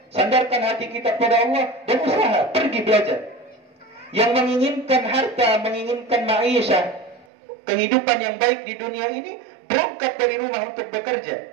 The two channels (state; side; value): drops out; left; at 7.2 s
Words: sandarkan hati kita kepada Allah, dan usaha, pergi belajar. Yang menginginkan harta, menginginkan ma'isyah, kehidupan yang baik di dunia ini, berangkat dari rumah untuk bekerja.